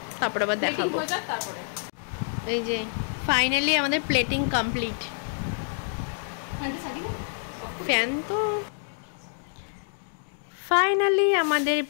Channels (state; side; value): silent; right; digital silence